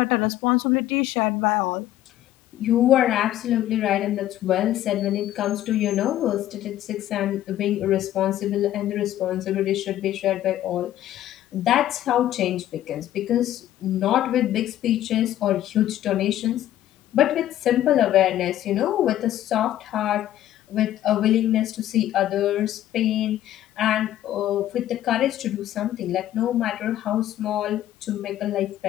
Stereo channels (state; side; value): quieter; right; 12.9 dB